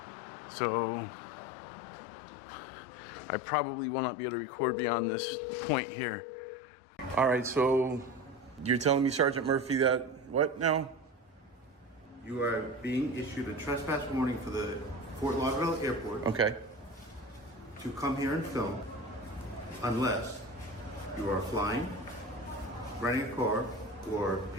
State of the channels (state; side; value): normal; both; correlation 0.30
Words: So I probably will not be able to record beyond this point here. All right, so you're telling me, Sergeant Murphy, that what now? You are being issued a trespass warning for the Fort Lauderdale Airport. Okay. To come here and film unless you are flying, renting a car, or